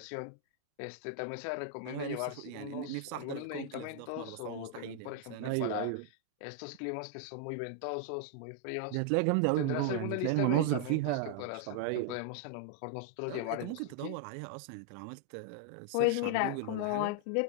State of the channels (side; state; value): both; different; correlation 0.00